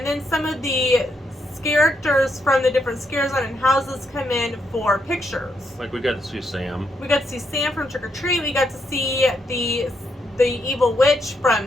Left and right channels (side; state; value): both; normal; correlation 0.79